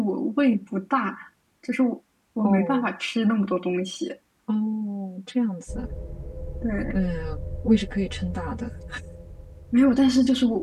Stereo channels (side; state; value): both; identical; correlation 1.00